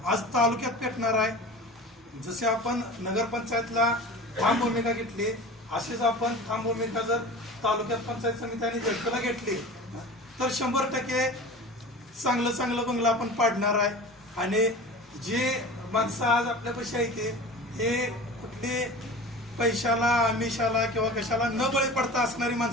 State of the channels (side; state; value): both; normal; correlation 0.36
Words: आज तालुक्यात पेटणार आहे. जसे आपण नगरपंचायतला ठाम भूमिका घेतली अशीच आपण ठाम भूमिका जर तालुक्यात पंचायत समिती आणि झटकला घेतली तर 100% चांगलं बंगला आपण पाडणार आहे. आणि जे माणसं आज आपल्यापाशी आहे हे कुठली पैशाला आमिषाला किंवा कशाला न बळी पडता असणारी